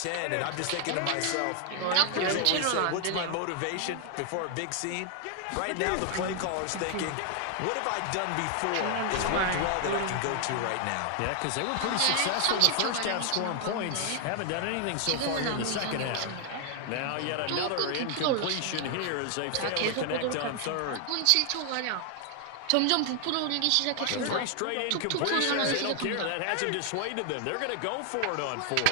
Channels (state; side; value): different; both; correlation 0.00